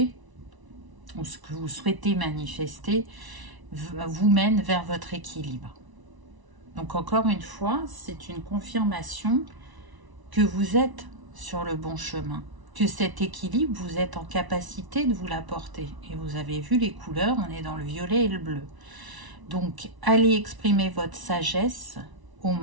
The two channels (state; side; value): late; left; 1.0 ms